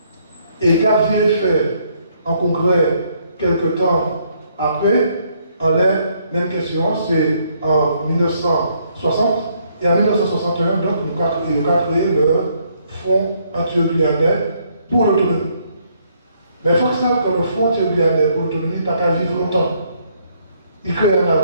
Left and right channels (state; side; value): inverted; both; correlation -0.70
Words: Et qu'a fait un congrès quelque temps après, en la même question, c'est en 1960, et en 1961, donc, nous avons créé le Fonds antio-guyanais pour l'autonomie. Mais il faut que ça, que le Fonds antio-guyanais pour l'autonomie n'a pas vivre longtemps. Il crée en